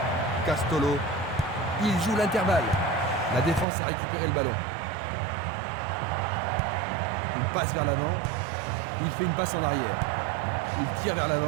Castolo. Il joue l'intervalle. La défense a récupéré le ballon. Il passe vers l'avant. Il fait une passe en arrière. Il tire vers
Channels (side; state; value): left; drops out; at 3.7 s